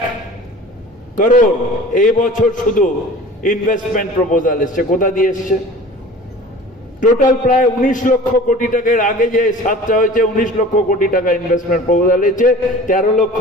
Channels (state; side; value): normal; both; correlation 0.42